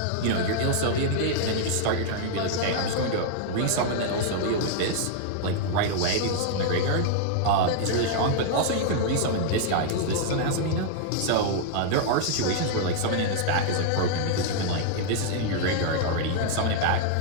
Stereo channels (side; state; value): both; different; correlation -0.01